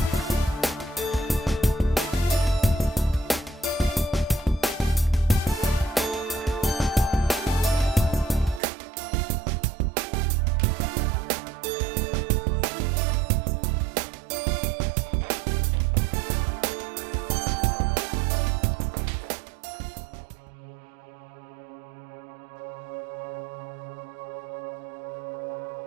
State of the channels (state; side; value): drops out; left; at 8.6 s